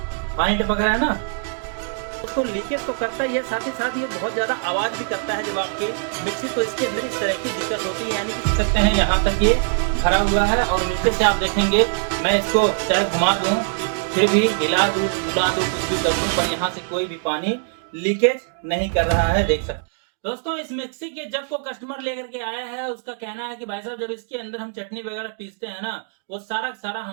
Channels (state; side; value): silent; left; digital silence